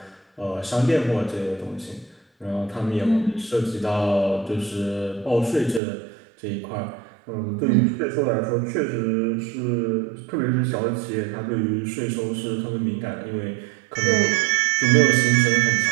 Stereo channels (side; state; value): left; drops out; at 5.8 s